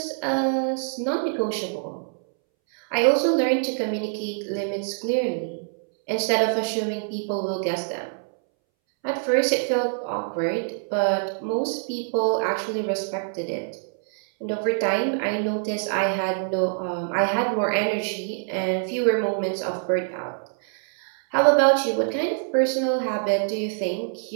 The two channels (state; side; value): silent; left; 62 dB below the other